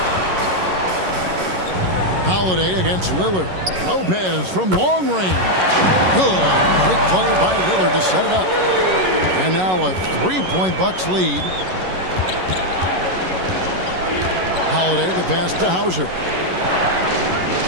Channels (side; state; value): left; late; 11 ms